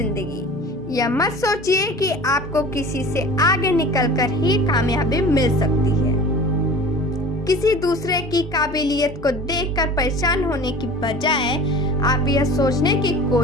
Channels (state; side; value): normal; both; correlation 0.40